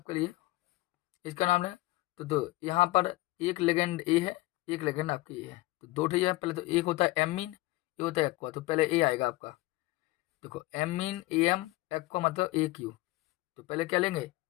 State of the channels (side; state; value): right; quieter; 19.3 dB